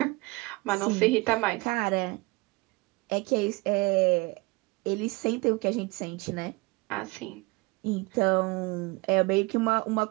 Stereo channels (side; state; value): left; quieter; 24.7 dB